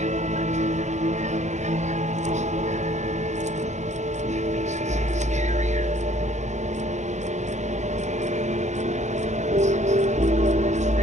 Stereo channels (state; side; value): late; left; 0.34 ms